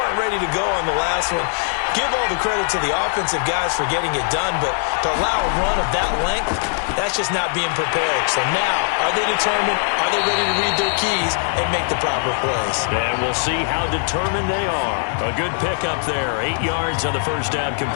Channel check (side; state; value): right; silent; 64 dB below the other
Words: ready to go on the last one. Give all the credit to the offensive guys for getting it done, but to allow a run of that length, that's just not being prepared. So now, are they determined? Are they ready to read their keys and make the proper plays? And we'll see how determined they are. A good pickup there. 8 yards on the first down